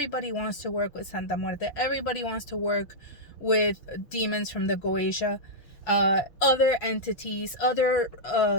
wants to work with Santa Muerte. Everybody wants to work with demons from the Goetia, other entities, other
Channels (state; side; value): late; right; 6.1 ms